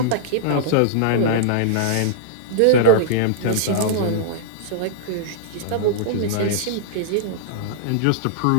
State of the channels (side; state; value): both; different; correlation -0.02